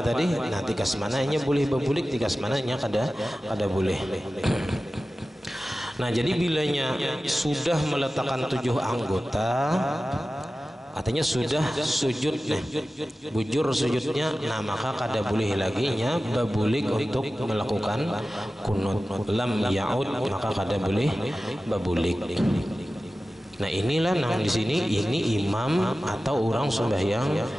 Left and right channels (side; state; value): both; normal; correlation 0.95